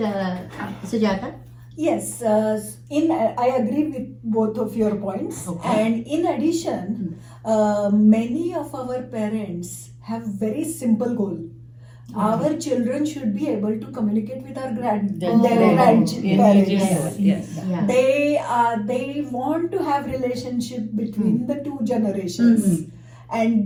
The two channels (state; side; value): identical; both; correlation 1.00